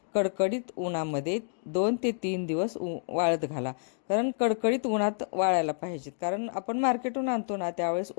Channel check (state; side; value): silent; right; digital silence